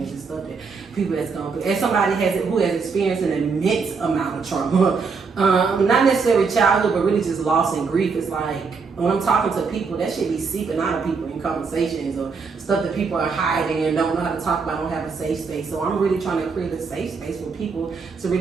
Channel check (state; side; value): quieter; left; 5.0 dB